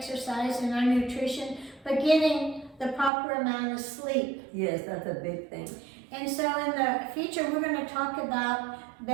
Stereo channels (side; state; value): left; drops out; at 3.1 s